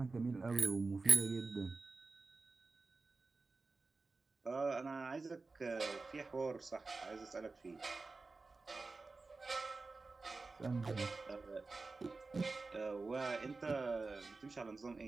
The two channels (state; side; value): quieter; left; 3.8 dB